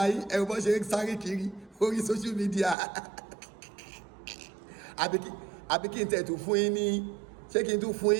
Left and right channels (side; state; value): left; drops out; at 2.8 s